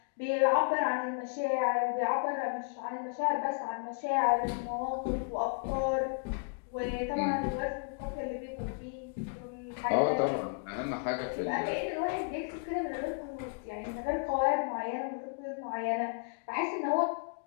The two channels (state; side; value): quieter; right; 39.7 dB